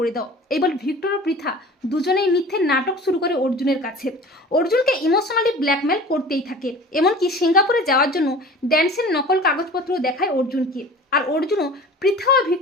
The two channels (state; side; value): normal; both; correlation 0.41